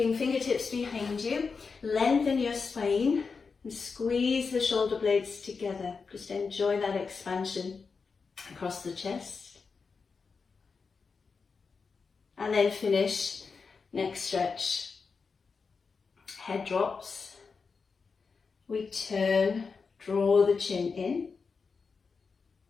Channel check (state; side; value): quieter; right; 5.0 dB